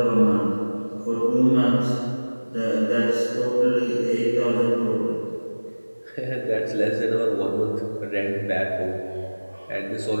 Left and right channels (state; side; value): inverted; both; correlation -1.00